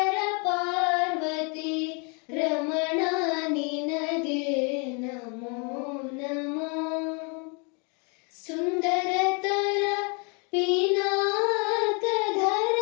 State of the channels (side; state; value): right; quieter; 34.9 dB